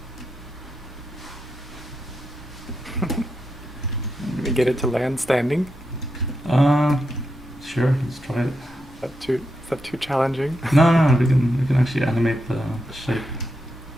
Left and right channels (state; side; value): normal; both; correlation 0.85